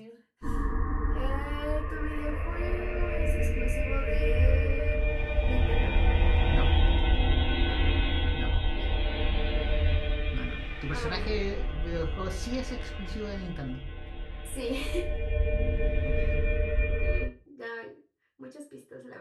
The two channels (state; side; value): identical; both; correlation 1.00